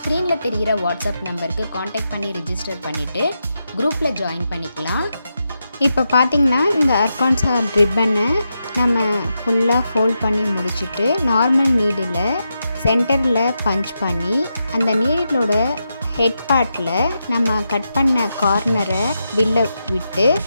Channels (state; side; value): inverted; both; correlation -0.86